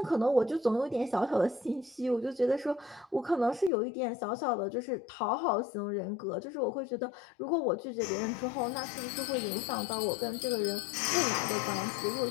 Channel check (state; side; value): drops out; right; at 3.7 s